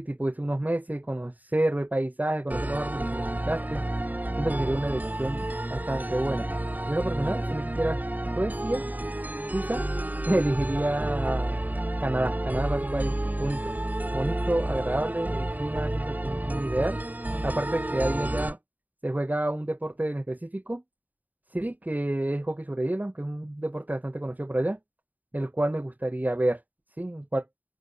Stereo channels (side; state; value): left; late; 0.081 ms